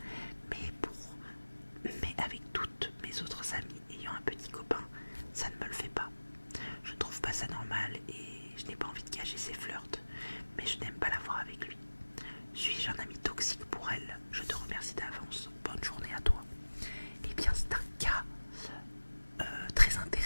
mais avec toutes mes autres amies ayant un petit copain, ça ne me le fait pas. Je ne trouve pas ça normal et je n'ai pas envie de cacher ses flirts, mais je n'aime pas la voir avec lui. Suis-je un ami toxique pour elle? Je te remercie d'avance. Bonne journée à toi. Eh bien, c'est un cas très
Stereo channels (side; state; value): both; inverted; correlation -1.00